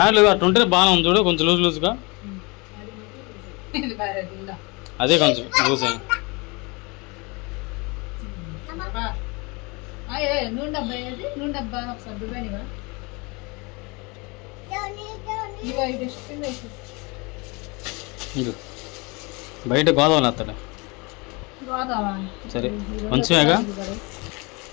అట్టుంటే బాగానే ఉంది చూడు, కొంచెం లూజ్ లూజ్గా. అదే కొంచెం లూజ్ అయింది. నూనె డబ్బా, నూనె డబ్బా ఒకసారి దుబానివా. బయట గోదావరి వస్తాడు. సరే కొంచెమేగా.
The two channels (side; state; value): right; quieter; 27.8 dB